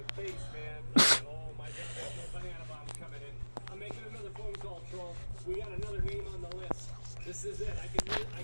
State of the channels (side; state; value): both; inverted; correlation -1.00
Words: face, man. Oh my god, there's no banana bombs coming in. I'm making another phone call, Troll. We got another name on the list. This is it. I